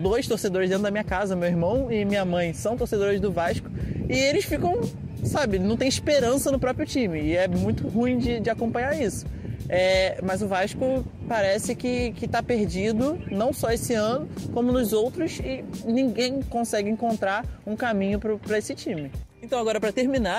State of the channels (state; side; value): identical; both; correlation 1.00